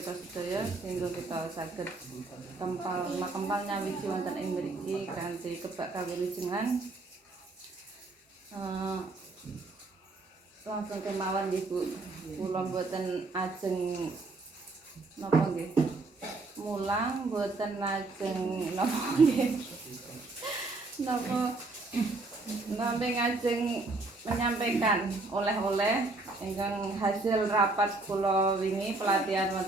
sedaya sehingga kita saged kempal nyawiji wonten ing mriki kanthi kebak kawilujengan. Langsung kemawon nggih Bu. Kula mboten ajeng napa nggih. Mulang mboten lajeng napa nggih. Napa nambe ngajeng menyampaikan oleh-oleh ingkang hasil rapat kula wingi pelatihan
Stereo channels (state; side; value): quieter; left; 3.4 dB